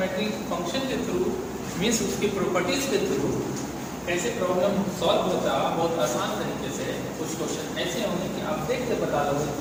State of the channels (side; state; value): both; identical; correlation 1.00